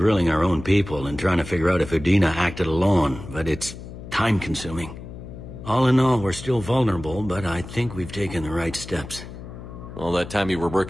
our own people and trying to figure out if Udina acted alone, but it's time-consuming. All in all, we're still vulnerable, but I think we've taken the right steps. All that time you were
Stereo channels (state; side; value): noise; left; hum, 13 dB below the sound